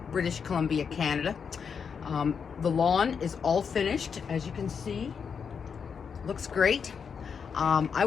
British Columbia, Canada. The lawn is all finished, as you can see. Looks great. I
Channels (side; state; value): right; quieter; 6.4 dB